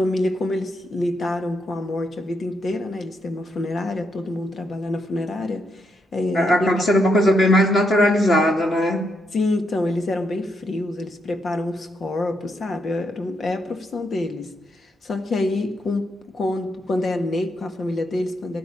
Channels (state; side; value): normal; both; correlation 0.79